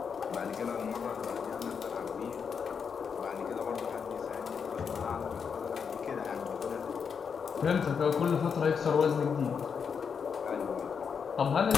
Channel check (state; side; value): quieter; right; 6.4 dB